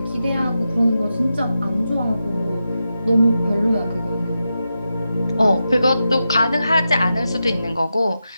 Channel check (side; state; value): both; inverted; correlation -0.89